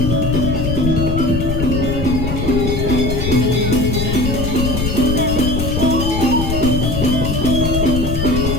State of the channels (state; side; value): noise; left; rumble, 2 dB below the sound